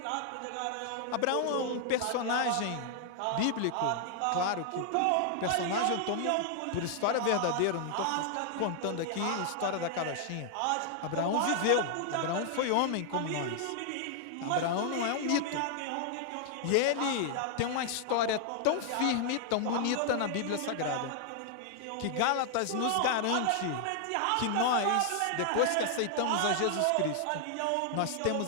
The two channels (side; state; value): both; different; correlation 0.00